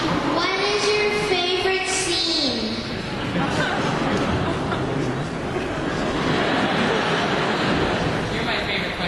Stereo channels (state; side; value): identical; both; correlation 1.00